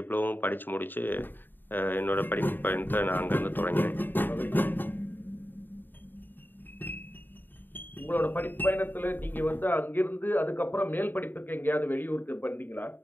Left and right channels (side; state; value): right; late; 0.093 ms